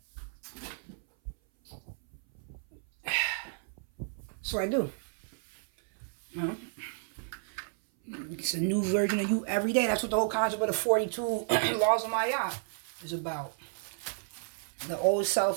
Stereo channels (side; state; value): left; silent; 56 dB below the other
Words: So I do. Well, it's a new version of you every day. That's what the whole concept of the 42 laws of Maya is about. The old